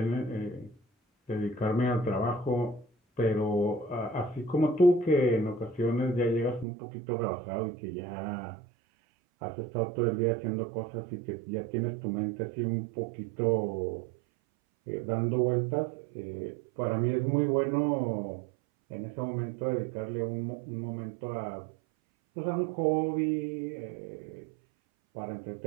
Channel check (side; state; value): left; drops out; at 6.7 s